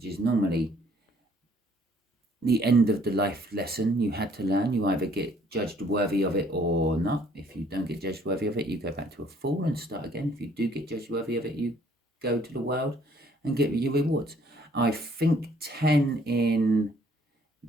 is normally the end of the life lesson you had to learn. You either get judged worthy of it or not. If you don't get judged worthy of it, you go back to a fool and start again. If you do get judged worthy of it, you go to the world and get your rewards. I think 10 in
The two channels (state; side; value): normal; both; correlation 0.62